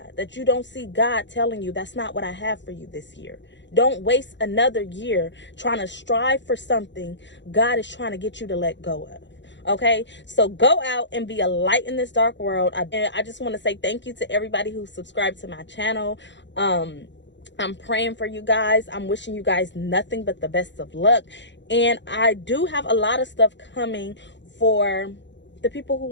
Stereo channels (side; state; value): right; late; 0.52 ms